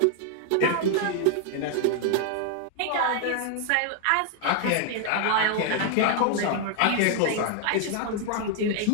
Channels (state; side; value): different; both; correlation 0.00